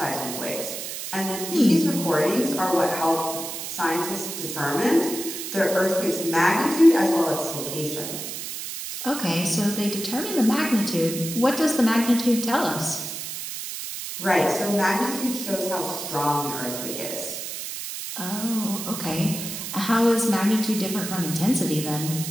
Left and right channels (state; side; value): noise; right; hiss, 7 dB below the sound